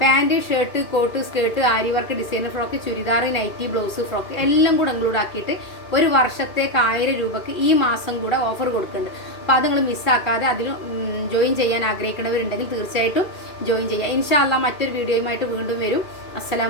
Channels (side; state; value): right; late; 2.4 ms